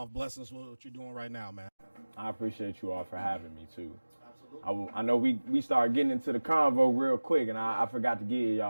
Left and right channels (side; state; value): both; inverted; correlation -1.00